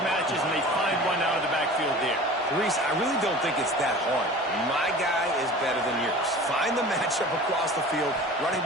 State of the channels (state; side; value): normal; both; correlation 0.40